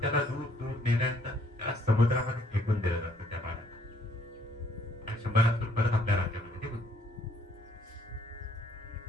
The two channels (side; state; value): both; normal; correlation 0.65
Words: त्याला दूर दूर नेल्यानंतर त्याला समुद्रामध्ये फेकून दिलं जातं त्या बाळाला. आणि शंभरासूर परत आपल्या राज्यामध्ये निघून